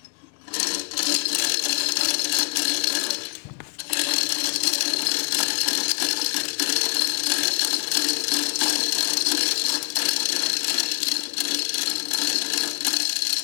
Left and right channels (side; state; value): right; quieter; 36.8 dB